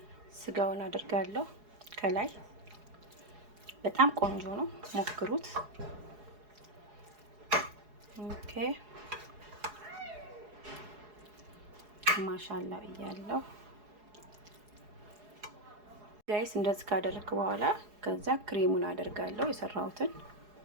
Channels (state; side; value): late; left; 4.8 ms